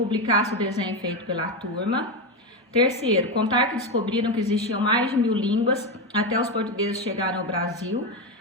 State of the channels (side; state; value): both; normal; correlation 0.12